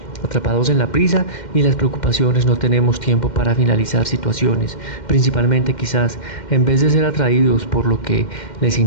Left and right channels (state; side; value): late; right; 2.1 ms